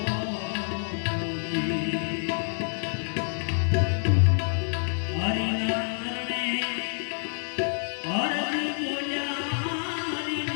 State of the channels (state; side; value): silent; right; digital silence